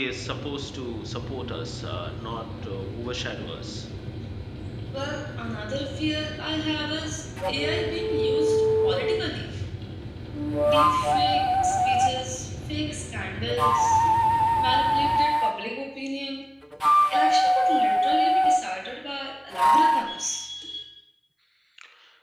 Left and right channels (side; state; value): both; identical; correlation 1.00